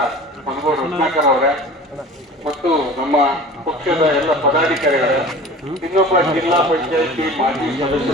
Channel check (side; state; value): both; normal; correlation 0.40